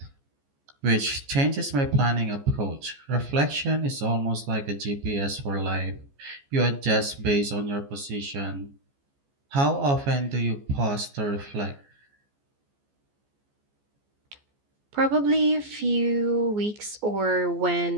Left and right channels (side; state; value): left; late; 14 ms